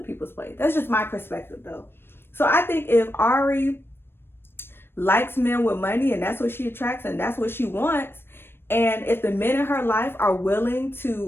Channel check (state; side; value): late; right; 0.11 ms